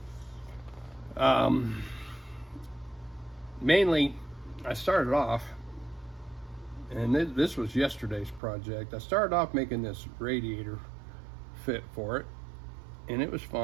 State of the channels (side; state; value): left; drops out; at 8.4 s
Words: Mainly, I started off, and this was yesterday's project. I started off making this radiator fit for it, and it was